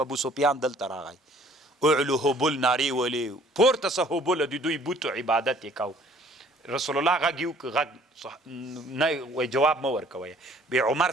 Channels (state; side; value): normal; both; correlation 0.56